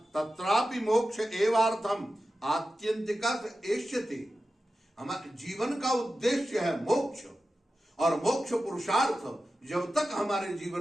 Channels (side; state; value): both; normal; correlation 0.93